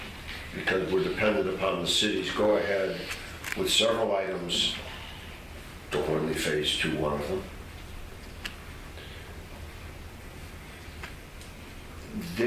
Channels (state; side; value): identical; both; correlation 1.00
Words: because we're dependent upon the city's go ahead with several items, the Hornley Phase 2, one of them,